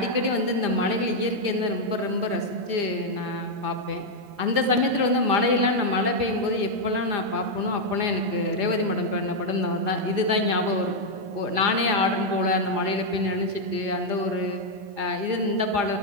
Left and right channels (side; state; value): left; late; 17 ms